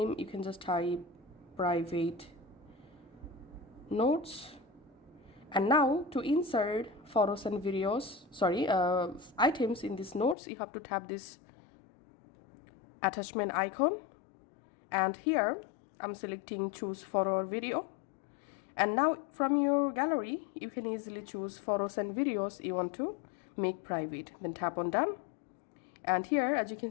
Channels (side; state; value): right; drops out; at 10.4 s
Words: you can just type private notes. And now to insert photos and videos, items in these notes, you have to tap this attachment icon. And here I'm selecting choose photo or video. And now from your gallery, you can easily choose photos and videos you want to make private. Then tap on done. And here, as you can